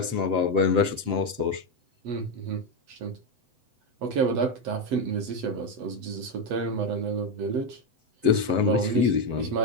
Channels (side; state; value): left; late; 7.7 ms